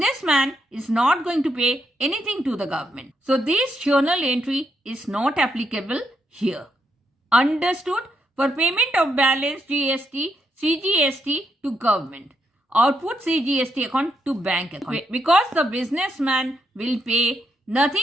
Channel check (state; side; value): normal; both; correlation 0.80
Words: is not going to pay anything to the government. So this journal entry is not applicable here. Understood? For payment of balance GST, CGST to government, output CGST account to bank account. Because the businessman will pay